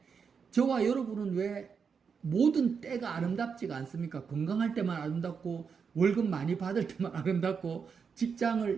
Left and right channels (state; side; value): quieter; left; 6.1 dB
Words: 저와 여러분은 왜 모든 때가 아름답지가 않습니까? 건강할 때만 아름답고 월급 많이 받을 때만 아름답고